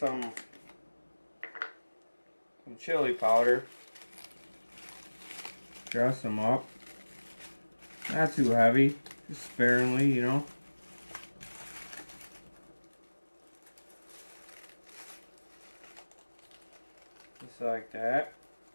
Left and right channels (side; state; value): both; inverted; correlation -1.00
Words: chili powder, dress them up. Not too heavy, just sparingly, you know. Just like that.